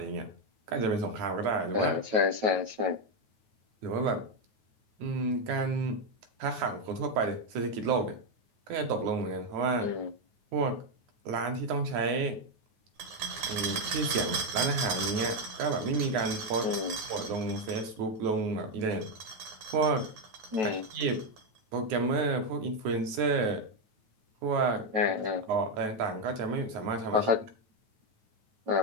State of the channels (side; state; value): left; late; 9.3 ms